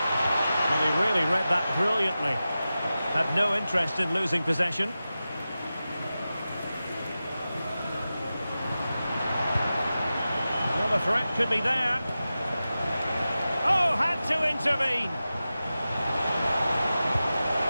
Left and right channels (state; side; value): inverted; both; correlation -0.94